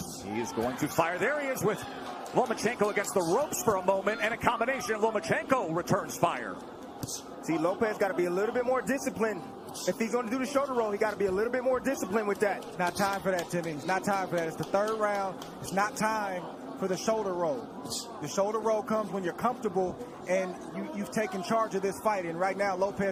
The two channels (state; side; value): identical; both; correlation 1.00